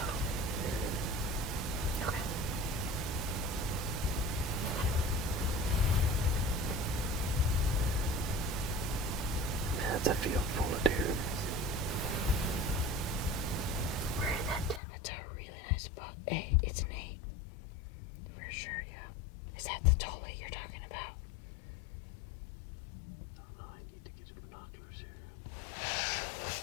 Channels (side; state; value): right; drops out; at 14.8 s